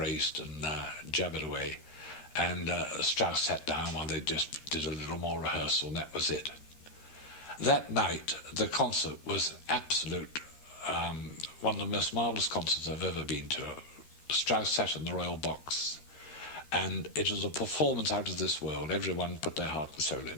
and jabbered away. And Strauss sat down while they just did a little more rehearsal, and that was it. That night, the concert was absolute, one of the most marvellous concerts I've ever been to. Strauss sat in the royal box, and it was a performance out of this world. Everyone put their heart and soul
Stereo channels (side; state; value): right; late; 13 ms